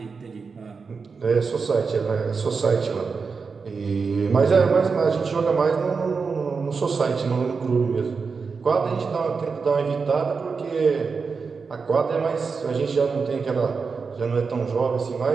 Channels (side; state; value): left; quieter; 5.0 dB